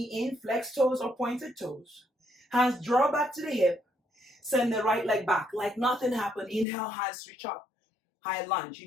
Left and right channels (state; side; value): drops out; right; at 6.7 s